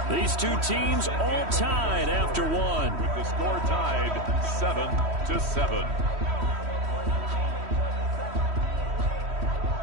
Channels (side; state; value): left; late; 3.1 ms